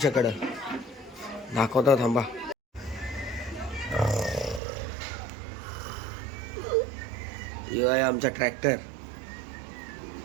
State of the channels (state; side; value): drops out; left; at 4.6 s